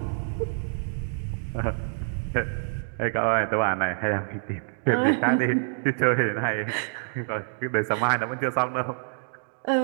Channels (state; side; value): silent; left; digital silence